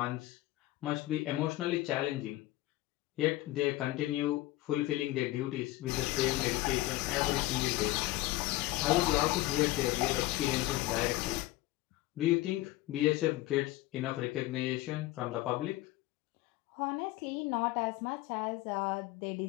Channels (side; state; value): right; quieter; 17.8 dB